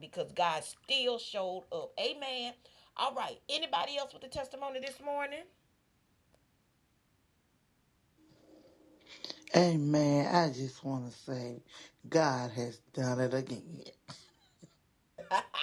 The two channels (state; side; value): identical; both; correlation 1.00